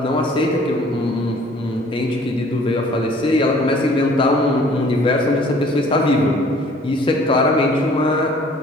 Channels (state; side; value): normal; both; correlation 0.54